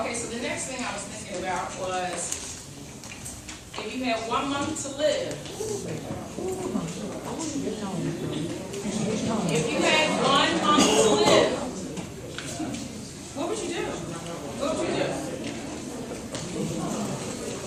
Okay, so the next thing I was thinking about was, if you had 1 month to live, if you had 1 month to live, what would you do? What would you do?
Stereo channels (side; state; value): both; identical; correlation 1.00